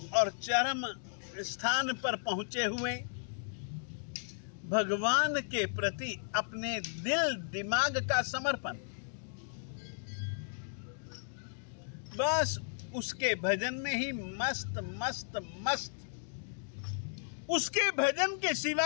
और चरम स्थान पर पहुंचे हुए भगवान के प्रति अपने दिल दिमाग का समर्पण, बस उसके भजन में ही मस्त मस्त मस्त, उसके भजन के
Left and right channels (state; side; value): silent; right; digital silence